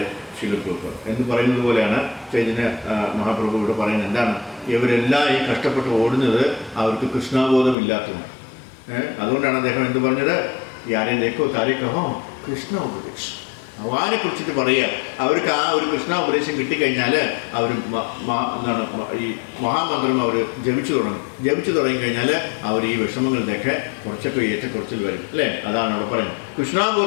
ശിലപ്രഭു എന്ന് പറയുന്നത് പോലെയാണ് ചൈതന്യ മഹാപ്രഭു ഇവിടെ പറയുന്നത്. എന്താണ്? ഇവരെല്ലാം ഈ കഷ്ടപ്പെട്ട് ഓടുന്നത് അവർക്ക് കൃഷ്ണബോധം ഇല്ലാത്തതുകൊണ്ട്. അതുകൊണ്ടാണ് അദ്ദേഹം എന്ത് പറഞ്ഞത്? യാരേക്കോ താരേക്കഹോ കൃഷ്ണ ഉപദേശം. ഭഗവാനെ കുറിച്ചിട്ട് പറയുക. അവർക്ക് ആ ഒരു കൃഷ്ണ ഉപദേശം കിട്ടിക്കഴിഞ്ഞാൽ അവർ എന്താണ് ഈ മഹാമന്ത്രം അവർ ജപിച്ചു തുടങ്ങിക്കഴിഞ്ഞാൽ അവർ ഈ വിഷമങ്ങളുടെയൊക്കെ കുറച്ചൊക്കെ ഏറ്റക്കുറച്ചിൽ വരും, അല്ലേ? അതാണ് അവിടെ പറയുന്നത്.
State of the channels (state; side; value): drops out; right; at 7.8 s